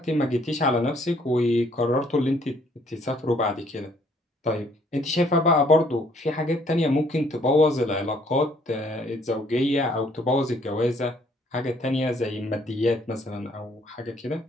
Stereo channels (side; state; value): both; normal; correlation 0.63